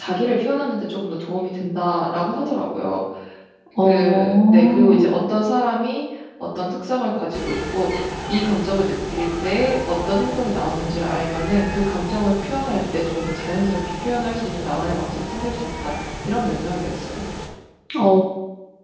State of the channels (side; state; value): both; identical; correlation 1.00